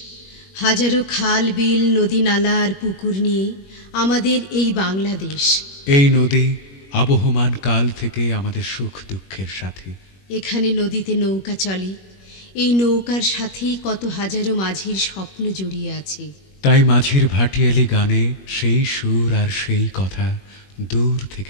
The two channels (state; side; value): late; right; 21 ms